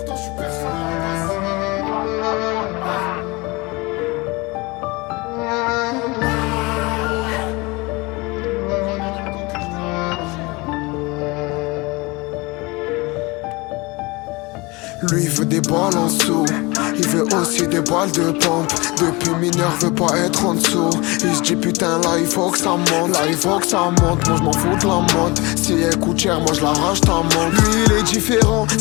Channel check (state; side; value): quieter; right; 24.7 dB